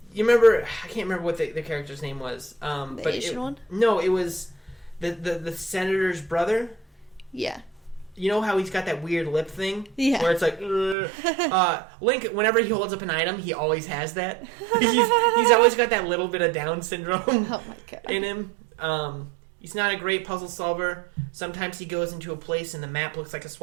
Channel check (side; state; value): left; drops out; at 11.0 s